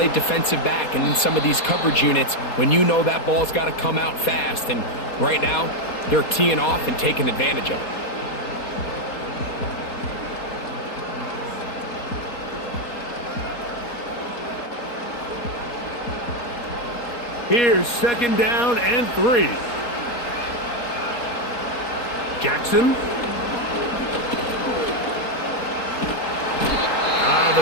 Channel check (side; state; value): right; late; 4.2 ms